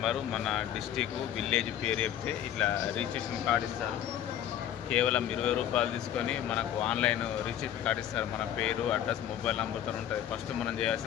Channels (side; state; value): right; quieter; 10.7 dB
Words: మన డిస్టిక్, విలేజ్ పేరు చెప్తే ఇట్లా రిజిస్ట్రేషన్ కార్డు ఇస్తారు. కేవలం 20 రూపాయలు తీసుకొని మనకు ఆన్లైన్ రిజిస్ట్రేషన్ కార్డు ఇస్తారు. మన పేరు, అడ్రస్, మొబైల్ నెంబర్తో ఉంటుంది. ఫస్ట్ మనం